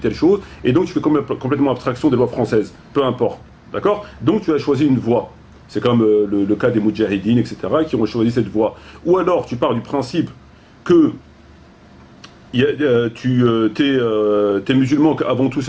chose, et donc tu fais complètement abstraction des lois françaises, peu importe. D'accord? Donc tu as choisi une voie. C'est comme le cas des Moudjahidines, etc., qui ont choisi cette voie. Ou alors tu pars du principe que t'es musulman, qu'avant tout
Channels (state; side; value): identical; both; correlation 1.00